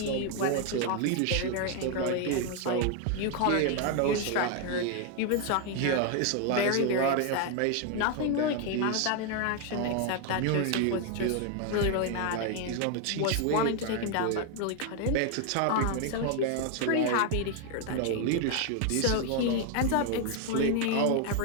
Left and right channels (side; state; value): both; different; correlation 0.01